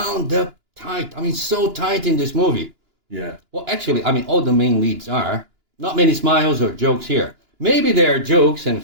up tight. I mean, so tight in this movie. Yeah. Well, actually, I mean, all the main leads are. Not many smiles or jokes here. Maybe there are jokes and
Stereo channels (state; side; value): late; left; 2.9 ms